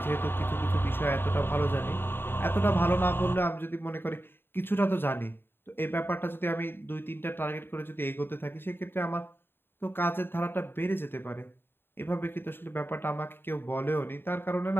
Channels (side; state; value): right; late; 0.10 ms